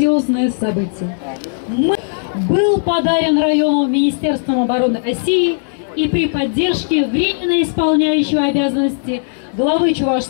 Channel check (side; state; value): right; silent; 61 dB below the other